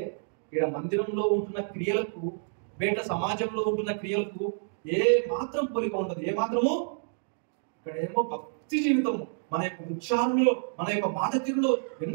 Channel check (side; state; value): left; silent; digital silence